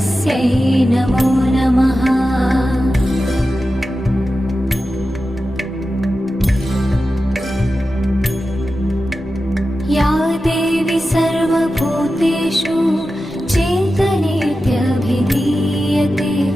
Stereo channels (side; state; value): both; normal; correlation 0.92